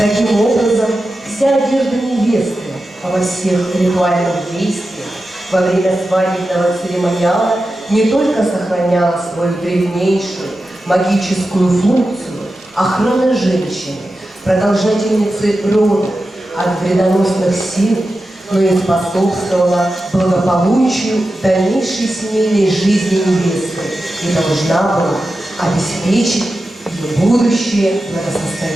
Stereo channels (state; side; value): normal; both; correlation 0.92